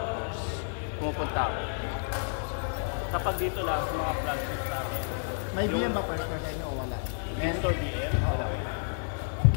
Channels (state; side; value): silent; right; digital silence